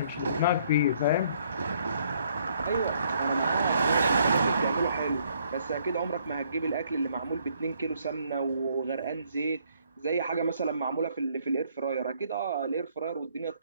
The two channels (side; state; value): both; inverted; correlation -0.67